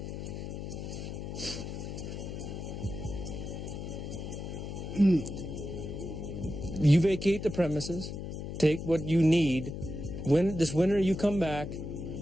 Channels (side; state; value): left; noise; hum, 7 dB below the sound